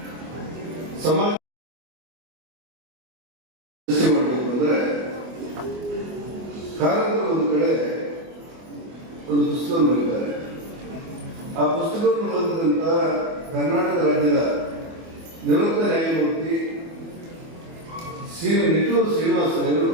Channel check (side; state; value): left; late; 24 ms